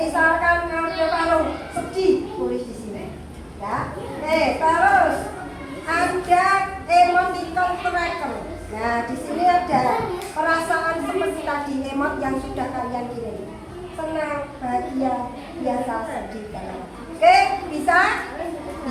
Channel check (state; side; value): identical; both; correlation 1.00